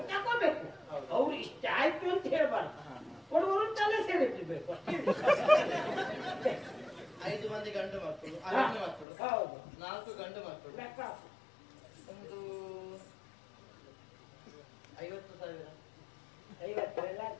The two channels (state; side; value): drops out; right; at 9.1 s